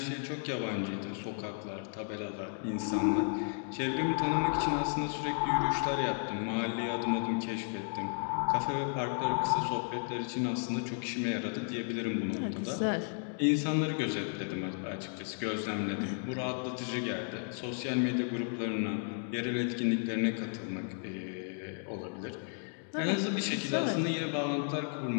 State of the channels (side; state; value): right; silent; 55 dB below the other